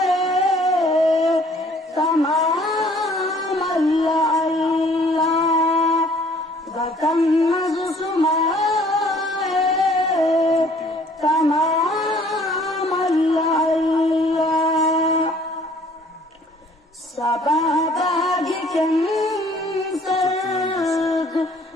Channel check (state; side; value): normal; both; correlation 0.57